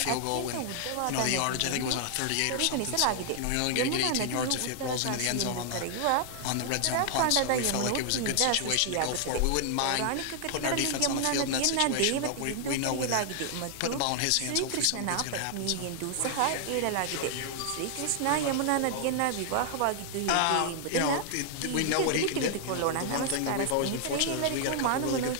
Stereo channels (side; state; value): both; different; correlation 0.00